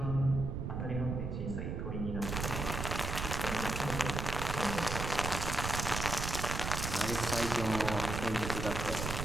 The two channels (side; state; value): right; noise; rumble, 3 dB below the sound